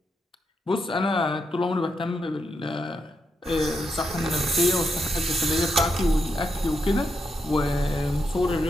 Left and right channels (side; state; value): both; normal; correlation 0.83